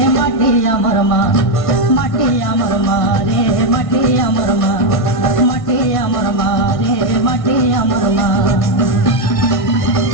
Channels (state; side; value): late; right; 1.5 ms